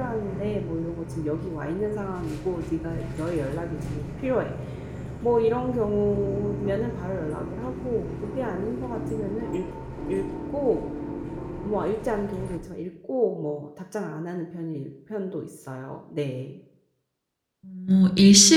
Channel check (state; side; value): identical; both; correlation 1.00